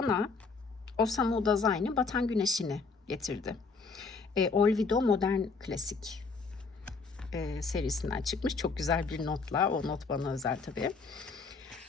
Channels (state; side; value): quieter; right; 4.5 dB